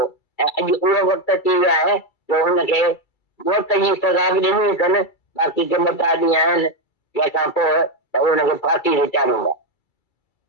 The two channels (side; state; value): right; late; 2.3 ms